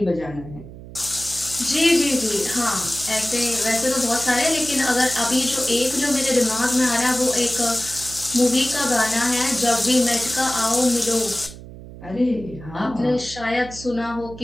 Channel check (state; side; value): noise; right; hum, 15 dB below the sound